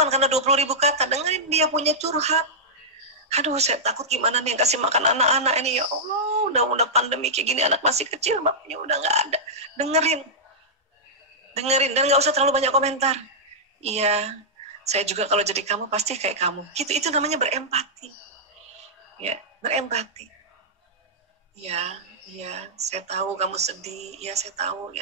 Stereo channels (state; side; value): normal; both; correlation -0.10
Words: karena 20.000 kata, dengerin dia punya curhat. Aduh, saya takut gimana nih yang kasih makan anak-anak ini, ya Allah, udah pandemi kayak gini, anak masih kecil, bapaknya udah nggak ada. Dengerin, dan nggak usah terlalu banyak komentar. Iya, saya juga kalau jadi kamu pasti kayak kamu. Gitu, itu namanya berempati. Ya, berempati. Ya, saya tahu kamu sedih. Ya, saya tahu.